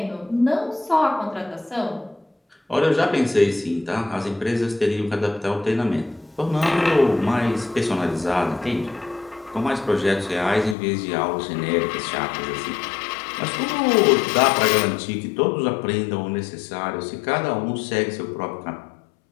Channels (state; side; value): drops out; right; at 10.8 s